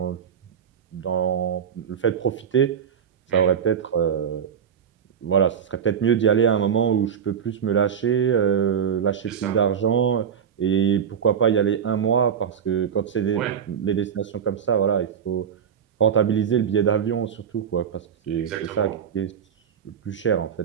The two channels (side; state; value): left; quieter; 7.9 dB